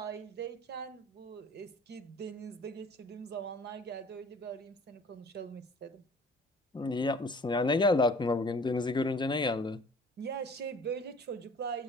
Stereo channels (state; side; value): normal; both; correlation 0.49